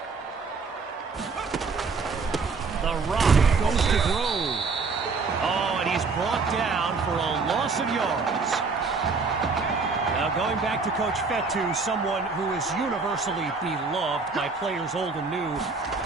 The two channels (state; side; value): quieter; left; 4.5 dB